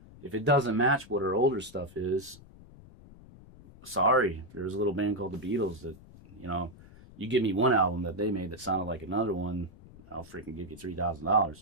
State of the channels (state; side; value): noise; left; rumble, 21 dB below the sound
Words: If it doesn't match what our older stuff is, sorry. There's a little band called the Beatles that, you give me one album that they made that sounded like another one, I'll freaking give you